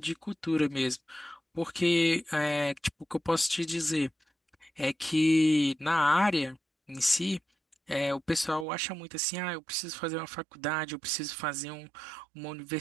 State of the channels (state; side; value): drops out; left; at 8.7 s